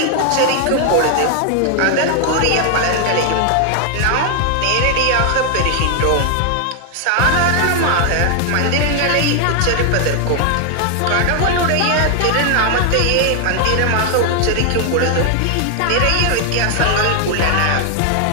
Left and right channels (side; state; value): both; different; correlation 0.00